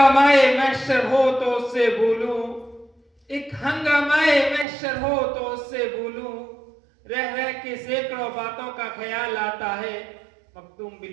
محشر ہو تو اس سے بولوں، ایک ہنگامائے محشر ہو تو اس سے بولوں، رہ رہ کے سینکڑوں باتوں کا خیال آتا ہے. مختوم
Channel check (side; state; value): left; drops out; at 4.7 s